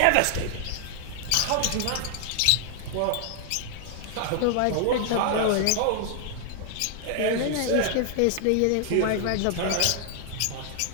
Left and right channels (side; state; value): both; different; correlation 0.00